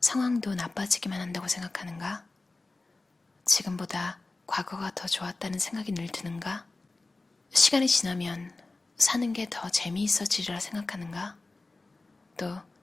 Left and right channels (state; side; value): quieter; right; 3.3 dB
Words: 나빠지기만 한다고 생각하는가? 지금보다 과거가 더 좋았다는 생각이 늘 드는가? 시간이 지나면 사는 게 더 재미있어지리라 생각하는가? 또